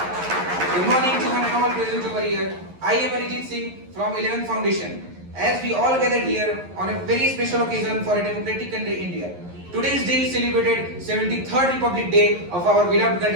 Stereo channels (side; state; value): left; late; 11 ms